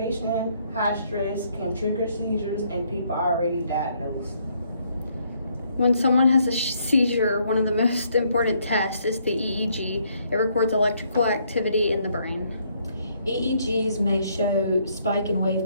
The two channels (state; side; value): inverted; both; correlation -0.70